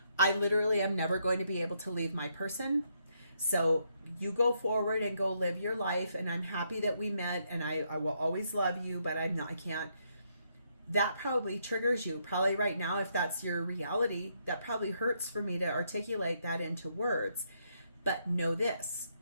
I literally am never going to be able to leave my person, so you go forward and go live your life, and I'm happy that we met, and I will always love you, but I can't. That probably triggers you. Probably right now, if that's your reality, that probably hurts for me to articulate that into words. But know this,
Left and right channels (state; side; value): inverted; both; correlation -0.75